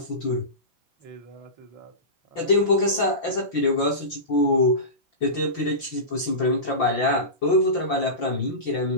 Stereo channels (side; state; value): right; late; 5.8 ms